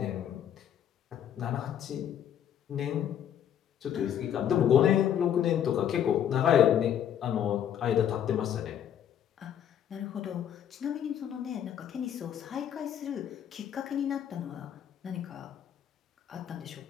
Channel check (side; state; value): right; quieter; 9.7 dB